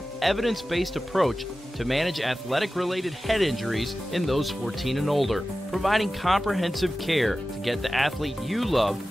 evidence-based approach to manage athletic-related head injuries in those 14 and older, providing comprehensive care to get the athlete you love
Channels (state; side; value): normal; both; correlation 0.95